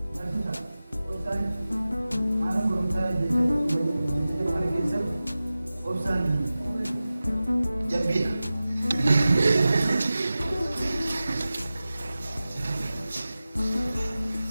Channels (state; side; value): inverted; both; correlation -0.96